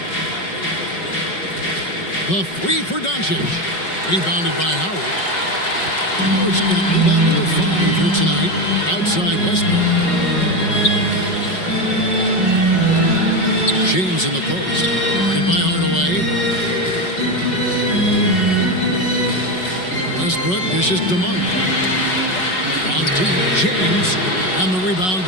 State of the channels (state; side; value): late; right; 5.4 ms